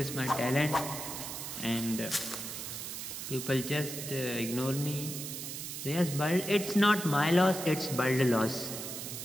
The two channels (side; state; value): right; noise; hiss, 7 dB below the sound